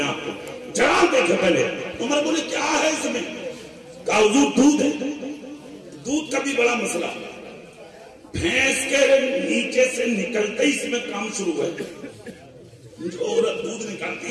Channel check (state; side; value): identical; both; correlation 1.00